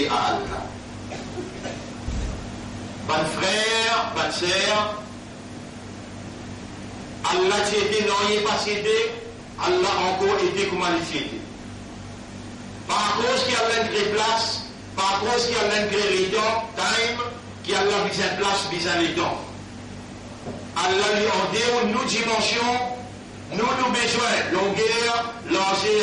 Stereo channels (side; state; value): both; identical; correlation 1.00